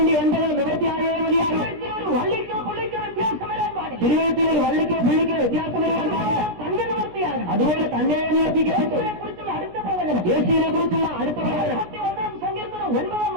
നിവർത്തിയായേ മതിയാകും. വള്ളിക്കോ പുള്ളിക്കോ വ്യത്യാസം വരാൻ പാടില്ല. തിരുവഴുത്തിൽ ഒരു വള്ളിക്കോ പുള്ളിക്കോ വ്യത്യാസം വരാൻ പാടില്ല. തന്നെ നിവർത്തിയാകും. അതുപോലെ തന്നെ നിവർത്തിക്കപ്പെട്ടു. കുറിച്ചുള്ള അടുത്ത പ്രവചനം, യേശുവിനെ കുറിച്ചുള്ള അടുത്ത പ്രവചനം 41 സങ്കീർത്തനം 9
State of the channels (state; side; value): late; left; 17 ms